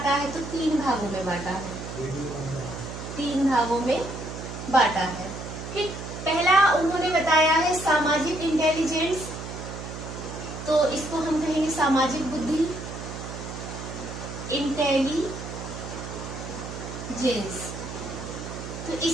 है? तो 3 भागों में बांटा है। 3 भागों में बांटा है। ठीक, पहला उन्होंने बताया है सामाजिक इंटेलिजेंस, तो इसको हम कहेंगे सामाजिक बुद्धि, इंटेलिजेंस। तो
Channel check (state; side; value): noise; right; hum, 9 dB below the sound